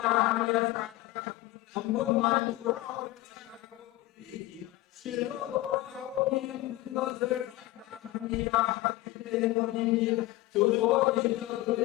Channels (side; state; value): right; quieter; 17.7 dB